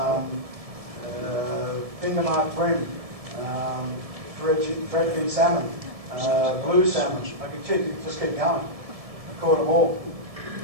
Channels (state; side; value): late; left; 1.7 ms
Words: fingermark brim, threadfin salmon, blue salmon. I could just keep going. I've caught them all.